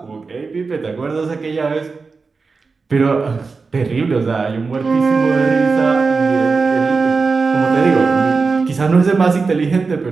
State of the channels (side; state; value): left; quieter; 4.5 dB